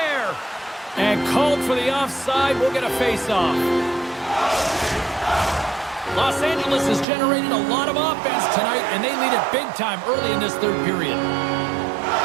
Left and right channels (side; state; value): left; drops out; at 7.1 s